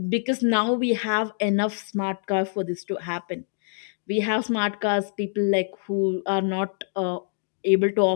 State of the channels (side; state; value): right; silent; digital silence